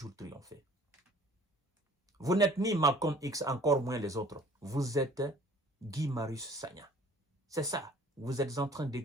triompher. Vous n'êtes ni Malcolm X, encore moins les autres. Vous êtes Guy Marius Sagna. C'est ça. Vous êtes en train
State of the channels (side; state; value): both; normal; correlation 0.53